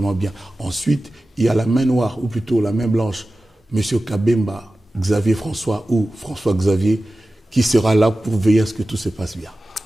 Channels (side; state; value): both; normal; correlation 0.95